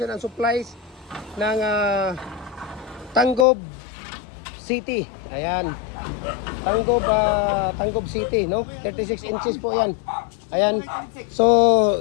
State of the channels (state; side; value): drops out; right; at 3.5 s